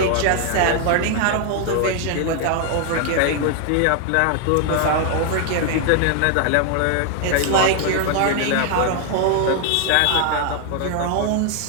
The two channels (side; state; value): both; different; correlation 0.00